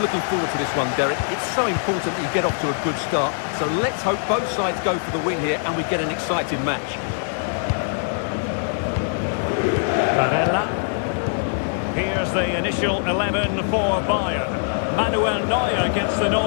looking forward to this one, Derek. It's so important that you get off to a good start. So let's hope both sides go for the win here and we get an exciting match. Barella. Here's the initial 11 for Bayern. Manuel Neuer gets the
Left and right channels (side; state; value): right; silent; 60 dB below the other